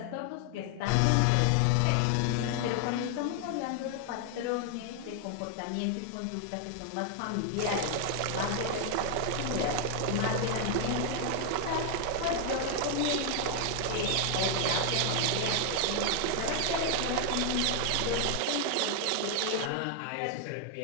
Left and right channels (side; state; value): both; different; correlation 0.00